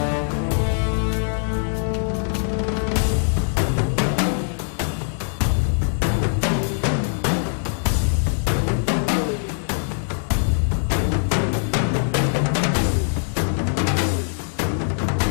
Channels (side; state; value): right; silent; digital silence